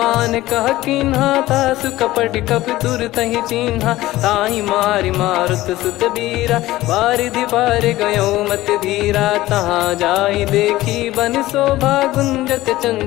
कह कीन्हा तासु कपट कप तुर तहि चिन्हा। ताहि मारि मारुत सुत बीरा बारिधि पार गयो मत धीरा। तहाँ जाई देखी बन शोभा गुंजत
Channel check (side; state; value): right; quieter; 16.9 dB